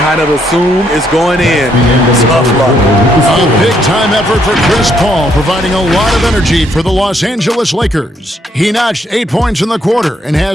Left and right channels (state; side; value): normal; both; correlation 0.72